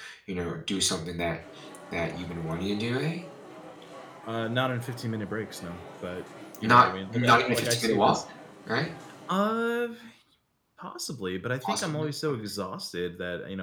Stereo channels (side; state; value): both; identical; correlation 1.00